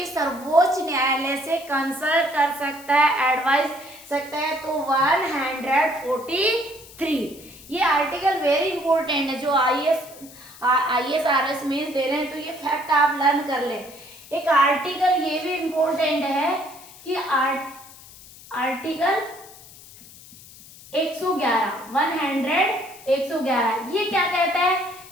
सर्वोच्च न्यायालय से कंसल्ट कर सकता है, एडवाइस सकता है? तो 143। ये आर्टिकल वेरी इंपॉर्टेंट है, जो IAS RS मेंस दे रहे हैं, तो ये फैक्ट आप लर्न कर ले। एक आर्टिकल ये भी इंपॉर्टेंट है कि आर्टिकल 111 ये क्या कहता है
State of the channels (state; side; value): noise; left; hiss, 20 dB below the sound